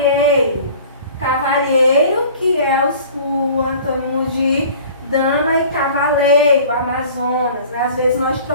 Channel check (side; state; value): both; inverted; correlation -0.46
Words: Cavalheiro, que é o antônimo de dama, e cavaleiro, Amazonas, né? Às vezes nós